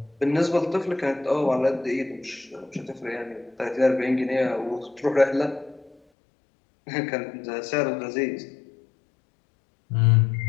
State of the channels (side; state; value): right; drops out; at 6.0 s